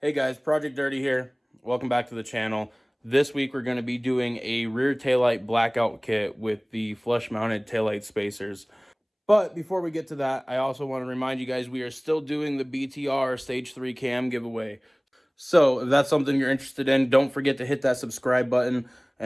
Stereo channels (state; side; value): identical; both; correlation 1.00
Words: Hey guys, Project Dirty here. Welcome back to the channel. This week we're going to be doing a rear taillight blackout kit with the flush mounted taillight spacers. But before we get to that, I also want to remind you guys we are still doing the BTR Stage 3 cam giveaway. So if that's something you're interested in, don't forget to hit that subscribe button